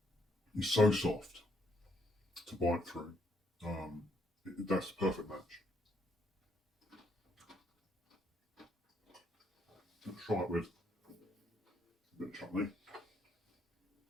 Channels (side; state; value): both; normal; correlation 0.73